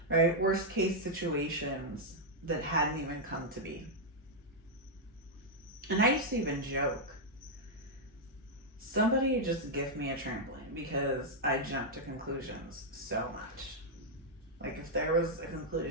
Right? Worst case situations that hadn't even come to be. And I used to even joke, somebody just give me a trampoline because I jumped to conclusions so much. Like if there was a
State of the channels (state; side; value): normal; both; correlation -0.03